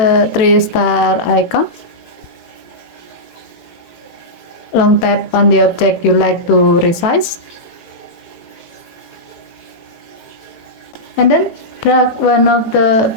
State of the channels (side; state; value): right; late; 18 ms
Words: 3-star icon. Long tap on the object you like to resize. And then drag one of the